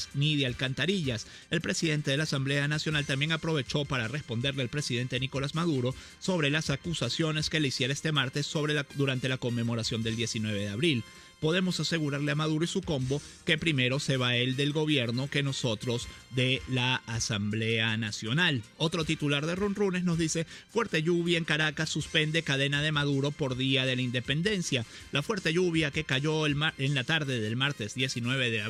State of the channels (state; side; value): identical; both; correlation 1.00